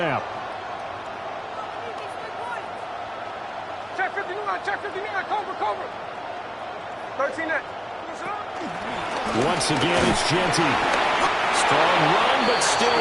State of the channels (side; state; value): both; identical; correlation 1.00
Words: Check 59, check 59, cover. 13 net. Once again, it's Genty. Strong run, but still